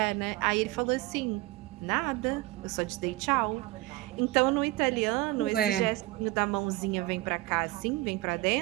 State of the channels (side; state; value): left; quieter; 19.0 dB